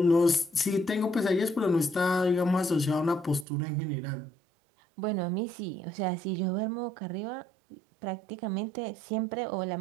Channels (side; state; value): left; drops out; at 3.5 s